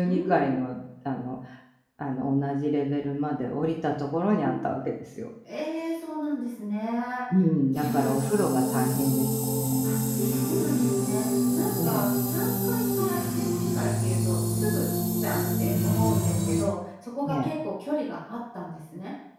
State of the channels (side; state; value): both; identical; correlation 1.00